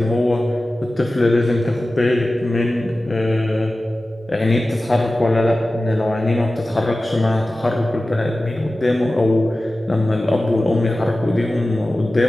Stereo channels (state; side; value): normal; both; correlation 0.95